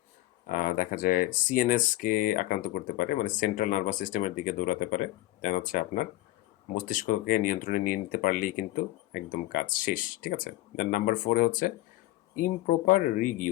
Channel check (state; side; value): quieter; right; 16.8 dB